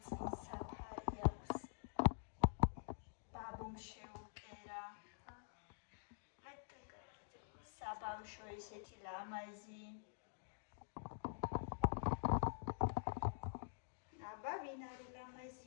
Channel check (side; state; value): right; silent; digital silence